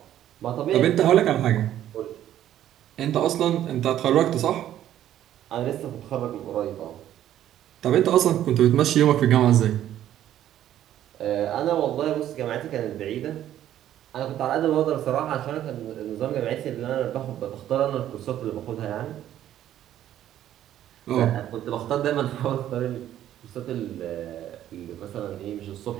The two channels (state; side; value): quieter; left; 11.8 dB